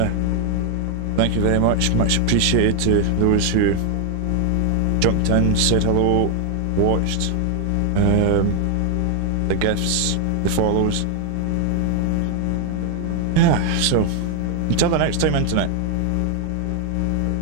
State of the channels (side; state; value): both; different; correlation 0.00